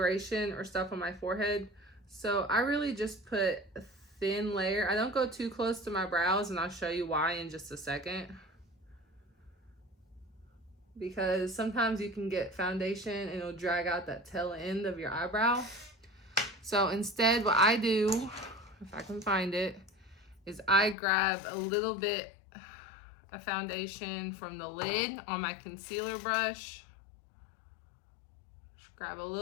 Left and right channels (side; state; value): right; drops out; at 21.0 s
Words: or stuff on my forehead, so I really just put a thin layer. I don't go too close to my brows, and I'll show you why in just a second. Because sometimes you can get foundation and it'll drag out that tail end of your eyebrow. So instead, what I do, if I can find it, is I grab a little bit of foundation from the lid on my concealer brush. Just grab a